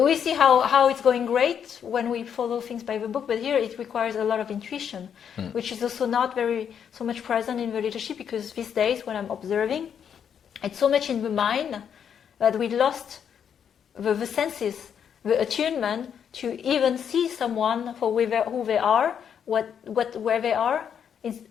see how it's going great when we follow things by the book, but here it requires a lot of intuition, which is also not so much present in the leadership, because these days when I'm observing, it's so much in the mind that we lost the senses, the attunement to even see someone for who they are, where they are, is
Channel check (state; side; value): quieter; right; 8.1 dB